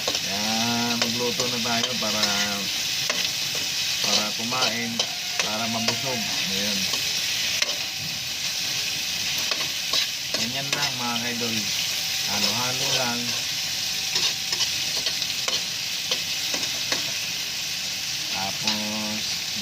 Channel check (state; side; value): identical; both; correlation 1.00